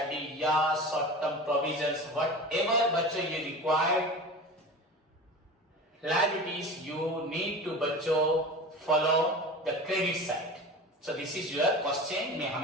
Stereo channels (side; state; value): both; normal; correlation 0.33